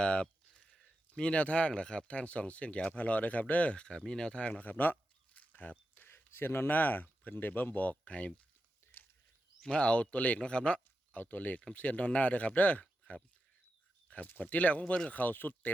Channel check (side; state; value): both; normal; correlation 0.89